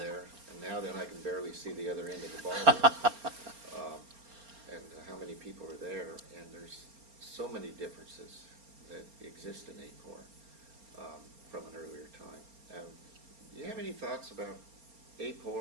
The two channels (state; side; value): late; left; 4.3 ms